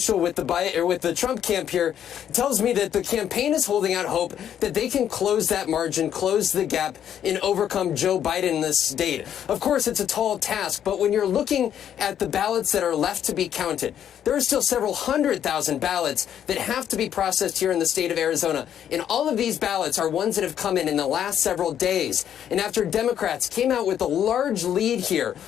with the Trump camp here tells me that the campaign is holding out hope that they can close that margin, close the gap, and overcome Joe Biden in this state. Of course, it's a tall task, but when you're looking at the ballots that are left to be counted, there are still several 100,000 ballots that have to be processed here in the state of Arizona. And all of these ballots are ones that have come in the last several days. And after Democrats came out with a large lead here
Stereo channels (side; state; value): right; quieter; 9.7 dB